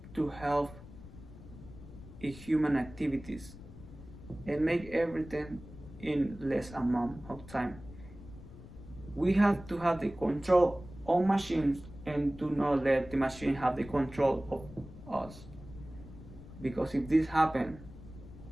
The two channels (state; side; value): noise; left; rumble, 16 dB below the sound